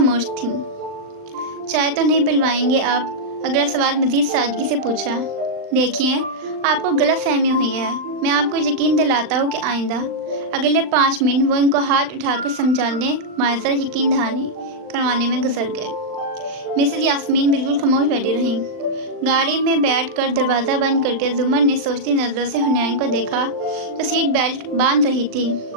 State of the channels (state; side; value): late; left; 39 ms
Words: تھیں۔ چائے تو نہیں پلوائیں گے آپ؟ اگلا سوال مزید سادگی سے پوچھا۔ دیکھیے، آپ کو غلط فہمی ہوئی ہے۔ میں آپ کو یقین دلاتا ہوں کہ آئندہ اگلے 5 منٹ وہ ان کو ہاتھ اٹھا کر سمجھانے، معذرت یقین دہانی کروانے میں گزر گئے۔ مسز یاسمین بالکل خاموش بیٹھی رہیں۔ گاڑی میں بیٹھ کر دروازہ بند کر کے زمر نے سوچتی نظروں سے حنین کو دیکھا جو سیٹ بیلٹ باندھ رہی تھی۔